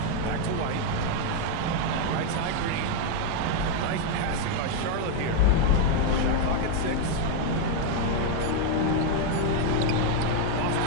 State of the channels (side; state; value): both; different; correlation 0.01